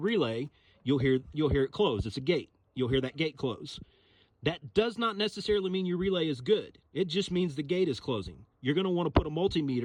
you'll hear it close. It's a gate. You'll hear that gate close. That does not necessarily mean your relay is good. It just means the gate is closing. You're going to want to put a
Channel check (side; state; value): both; identical; correlation 1.00